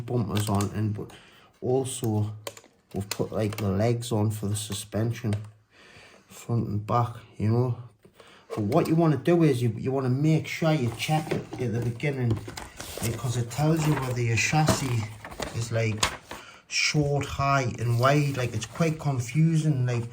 on, and but also we've put like the legs on for the suspension, front and back, you know. But what you want to do is you want to make sure you check it at the beginning, because it tells you whether your chassis is like short, high and wide. Like, it's quite confusing. Like,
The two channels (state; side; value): identical; both; correlation 1.00